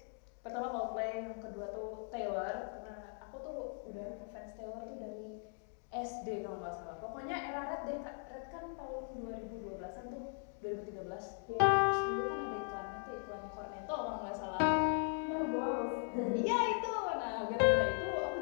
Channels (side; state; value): right; silent; 52 dB below the other